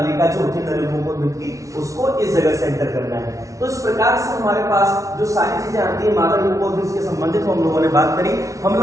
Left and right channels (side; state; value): left; late; 0.16 ms